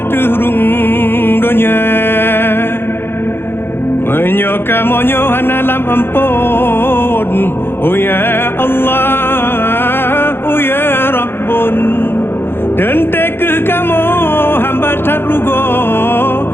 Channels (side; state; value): right; late; 0.11 ms